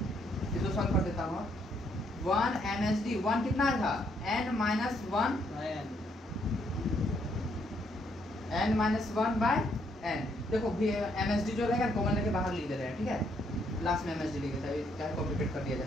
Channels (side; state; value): both; normal; correlation 0.72